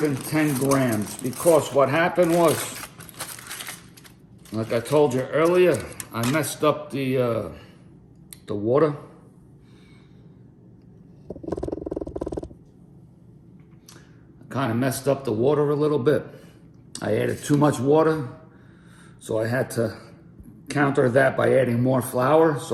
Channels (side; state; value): both; identical; correlation 1.00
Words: grams because what happened was, like I told you earlier, I messed up the water. Kind of messed up the water a little bit. I added too much water, so I had to counter that by adding more flour,